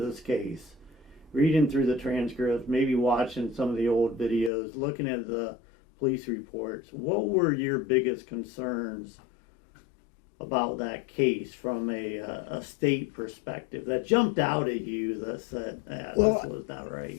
case, reading through the transcripts, maybe watching some of the old videos, looking at the police reports, what were your biggest concerns about that case from a state perspective that jumped out at you that said, this was not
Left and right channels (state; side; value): drops out; right; at 4.5 s